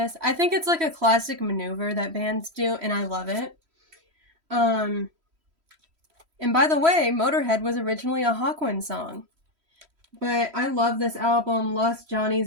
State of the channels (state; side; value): late; left; 3.1 ms